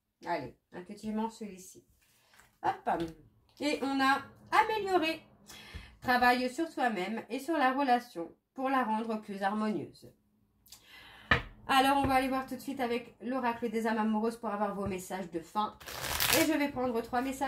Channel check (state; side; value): identical; both; correlation 1.00